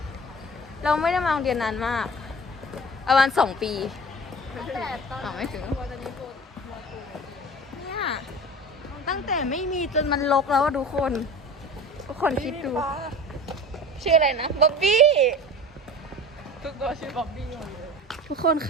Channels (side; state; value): both; normal; correlation 0.37